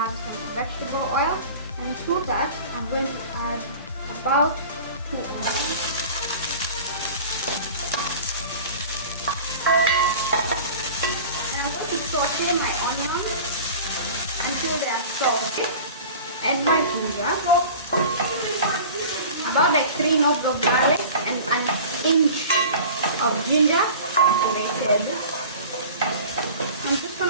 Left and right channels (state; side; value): inverted; both; correlation -0.39